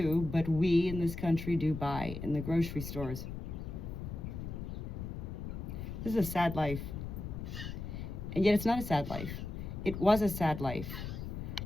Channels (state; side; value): noise; left; rumble, 7 dB below the sound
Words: but we in this country do buy in the grocery stores. This is a sad life. And yet it's not a sad life. It was a sad life.